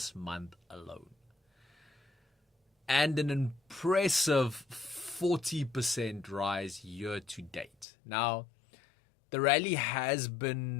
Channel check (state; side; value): drops out; right; at 7.9 s